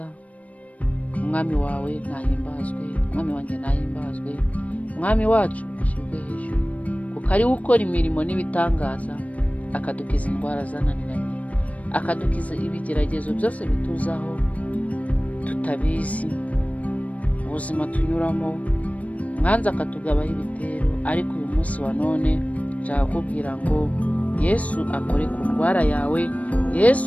Umwami wawe nahimbazwe, umwami wanjye nahimbazwe, umwami wacu ashimwe hejuru, kuko ari we ukora imirimo n'ibitangaza, akadukiza indwara zananiranye, akadukiza ibigeragezo byose bituzaho tutabizi, ubuzima tunyuramo, mwanza akatugabaho ibitero. Ariko uyu munsi wa none nshaka kubwira ngo Yesu akore ku ndwara yawe,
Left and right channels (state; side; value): late; right; 0.068 ms